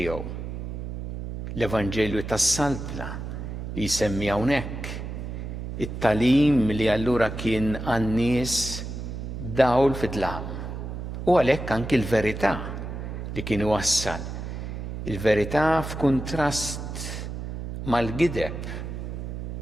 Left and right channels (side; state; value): right; noise; hum, 7 dB below the sound